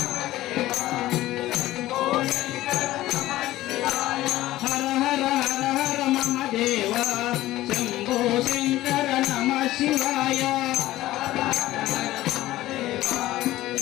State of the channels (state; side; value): quieter; right; 15.9 dB